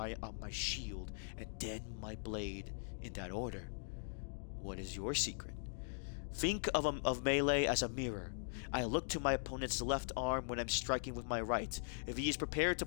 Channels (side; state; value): right; silent; digital silence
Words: on my shield and then my blade, in that order. What is your secret? Think of melee as a mirror. I look to my opponent's left arm when I'm striking with my right. If he is prepared to